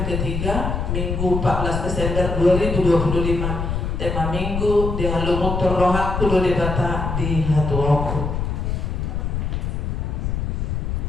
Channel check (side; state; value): left; noise; rumble, 2 dB below the sound